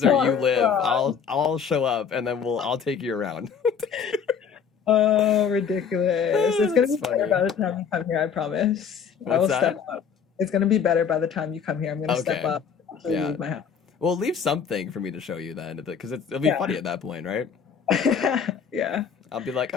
where you live, I'll show up and then I'll take you around. Oh, ridiculous. It's going to be That's better funny. by the time you come here, I promise. I will What's that? step up. It's going to be better by the time you come here. I'm going to step Okay. up to Yeah. leave my house. Well, leave something for me to show you then, because it'll be Yeah. funny at that point, right? Yeah. I'll be like,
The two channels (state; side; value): quieter; right; 6.9 dB